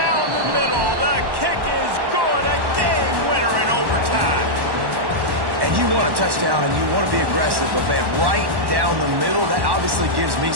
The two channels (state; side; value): late; left; 1.1 ms